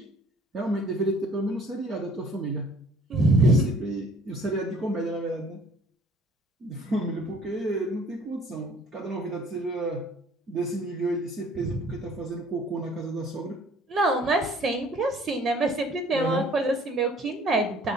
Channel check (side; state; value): both; normal; correlation 0.55